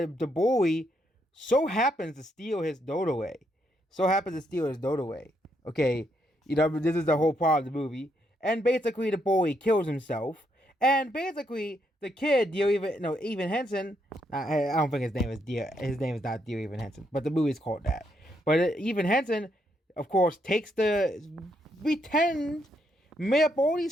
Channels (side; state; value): both; normal; correlation 0.76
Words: bully. So happens to steal his note away. Okay, this is the whole part of the movie. And basically, the bully kills himself. And basically, the kid, Evan Henson. I don't think his name is Dear. His name is not Dear Evan Henson, but the movie's called that. But Evan Henson, of course, takes the pretend made up all